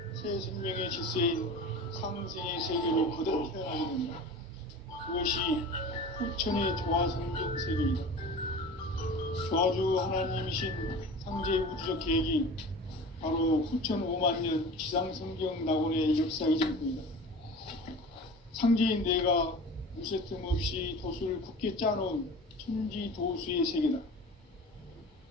새 생명의 질서인 상생의 세계로 거듭 태어나게 된다. 그것이 후천의 조화성경 세계이다. 조화주 하나님이신 상제의 우주적 계획이 바로 후천 5만 년 지상성경 낙원의 역사이실 뿐이다. 상제인 내가 무쇠틈 없이 도수를 굳게 짜놓은 천지도수의 세계다.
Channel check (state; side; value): normal; both; correlation 0.37